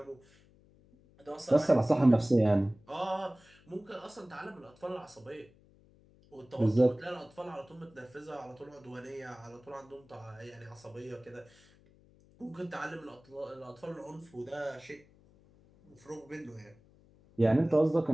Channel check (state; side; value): noise; left; hum, 28 dB below the sound